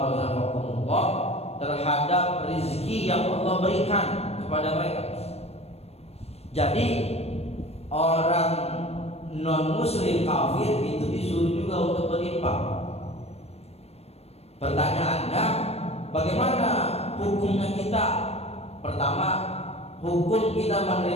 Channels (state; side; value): late; right; 0.30 ms